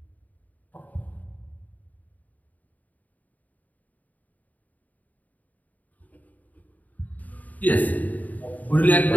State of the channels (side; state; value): right; late; 0.076 ms